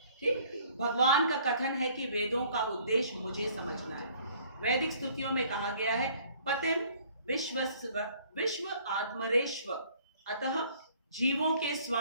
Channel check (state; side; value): inverted; both; correlation -0.57